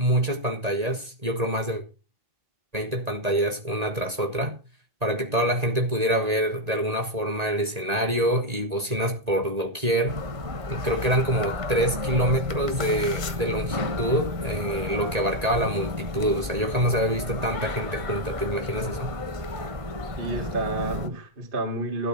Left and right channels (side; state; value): left; late; 1.8 ms